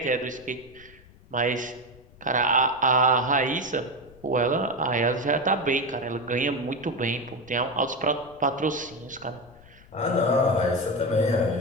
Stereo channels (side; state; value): left; noise; rumble, 24 dB below the sound